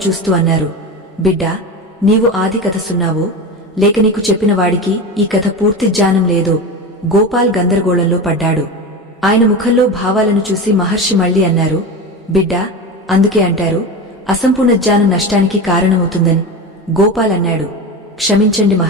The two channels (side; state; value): both; normal; correlation 0.24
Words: చూస్తూ అన్నారు. బిడ్డా, నీవు ఆది కథ సున్నావో, లేక నీకు చెప్పిన వాడికి ఈ కథ పూర్తి జ్ఞానం లేదో? గోపాల్ గందరగోళంలో పడ్డాడు. ఆయన ముఖంలో భావాలను చూసి మహర్షి మళ్లీ అన్నారు. బిడ్డా, అందుకే అంటారు అసంపూర్ణ జ్ఞానం నష్టానికి కారణమవుతుందని. గోపాల్ అన్నాడు. క్షమించండి